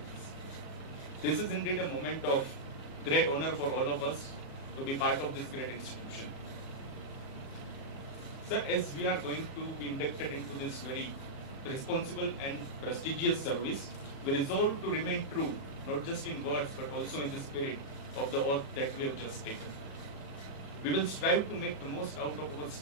us. This is indeed a moment of great honor for all of us to be part of this great institution. Sir, as we are going to be inducted into this very responsible and prestigious service, we resolve to remain true, not just in words but also in the spirit of the oath that we have just taken. We will strive to make the most out of our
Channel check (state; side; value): late; right; 36 ms